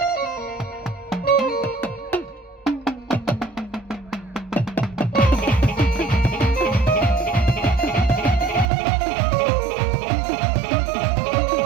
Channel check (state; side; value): drops out; left; at 8.7 s